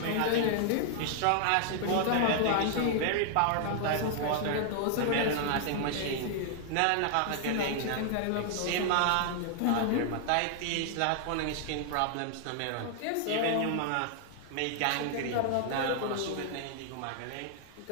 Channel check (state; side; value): different; both; correlation 0.00